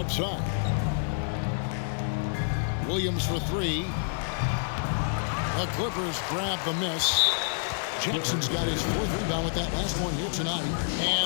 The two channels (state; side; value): silent; right; digital silence